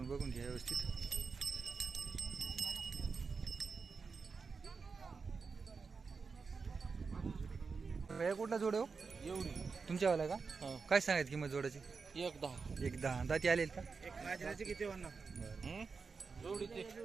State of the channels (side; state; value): left; quieter; 4.9 dB